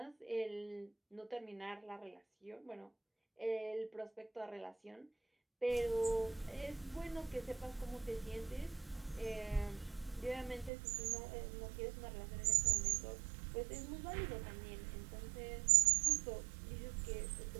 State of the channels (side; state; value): left; drops out; at 10.7 s